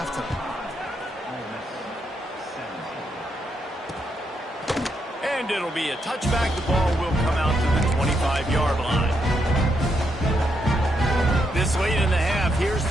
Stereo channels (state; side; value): normal; both; correlation 0.80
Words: And it'll be a touchback. The ball will come out to the 25-yard line. This late in the half, here's